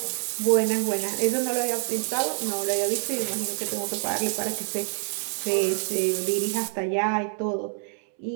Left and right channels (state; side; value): silent; left; 61 dB below the other